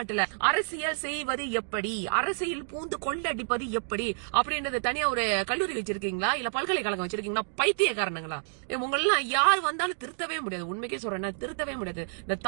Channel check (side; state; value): left; silent; digital silence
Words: அரசியல் செய்வது எப்படி, அரசியல் பூந்து கொள்ளடிப்பது எப்படி அப்படின்றது தனியா ஒரு கல்லூரி வச்சிருக்கீங்களா, இல்ல பல்கலைக்கழகம் வச்சிருக்கீங்களா? பைத்தியக்காரனுங்களா உங்களெல்லாம் யார் வந்தாலும் திருத்தவே முடியாது. உண்மைக்கே சொல்றேன், திருத்தவே முடியாது. இந்த